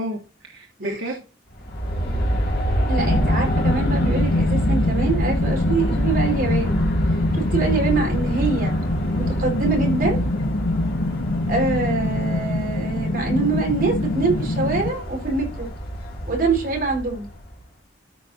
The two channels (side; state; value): both; normal; correlation 0.59